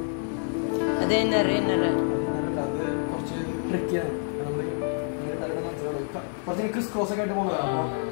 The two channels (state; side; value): silent; right; 56 dB below the other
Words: അത് ഇന്നറ് ഇന്നറ് കുറച്ച് ട്രിക്കിയാണ്. കുറച്ച് ക്രിസ് ക്രോസ് ഒക്കെ ആയിട്ട് പോകുന്നതാണ്.